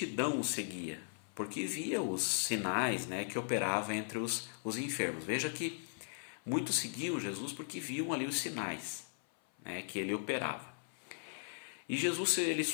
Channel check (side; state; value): right; silent; 52 dB below the other